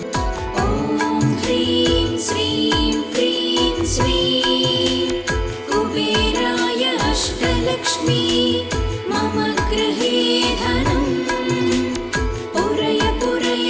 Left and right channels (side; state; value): both; identical; correlation 1.00